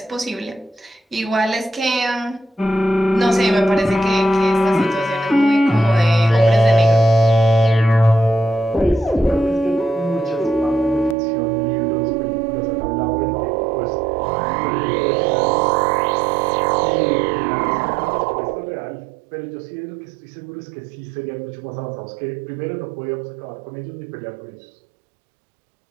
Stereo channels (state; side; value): drops out; left; at 11.2 s